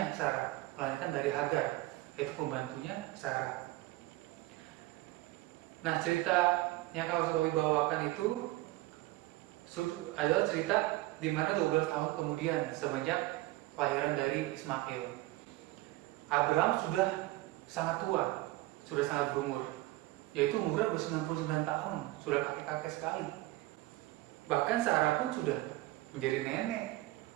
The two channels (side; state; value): left; quieter; 18.5 dB